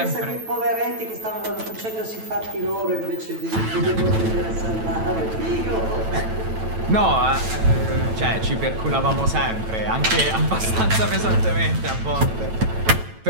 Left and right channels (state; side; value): late; left; 9.0 ms